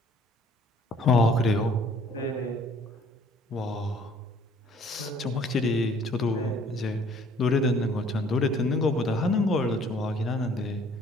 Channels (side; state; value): both; normal; correlation 0.57